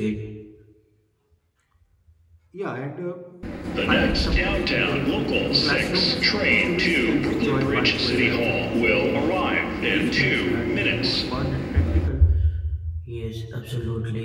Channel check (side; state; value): both; identical; correlation 1.00